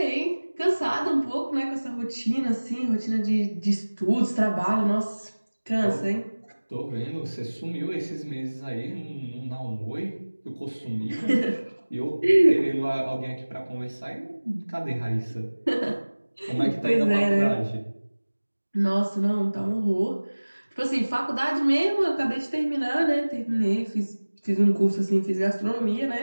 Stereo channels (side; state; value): both; inverted; correlation -1.00